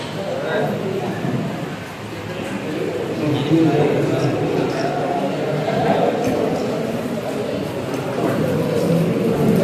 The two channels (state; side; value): identical; both; correlation 1.00